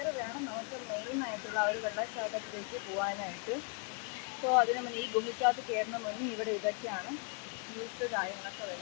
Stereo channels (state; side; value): quieter; right; 36.2 dB